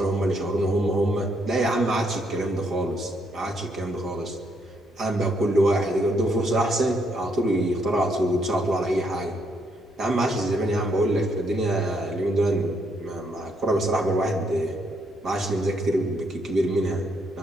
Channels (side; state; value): both; normal; correlation 0.74